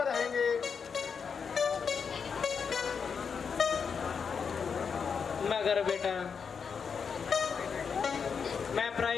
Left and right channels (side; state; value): right; quieter; 6.2 dB